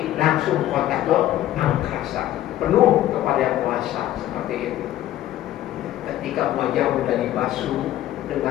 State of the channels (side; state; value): right; quieter; 13.4 dB